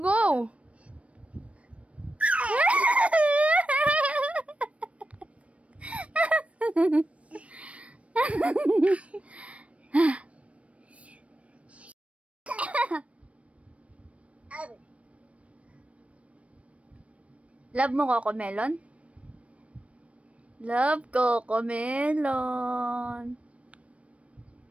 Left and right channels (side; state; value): left; late; 0.063 ms